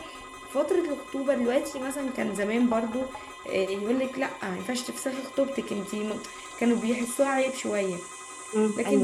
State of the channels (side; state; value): both; identical; correlation 1.00